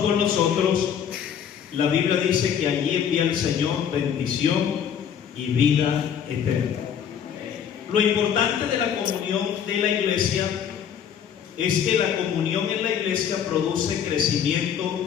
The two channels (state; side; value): quieter; right; 8.4 dB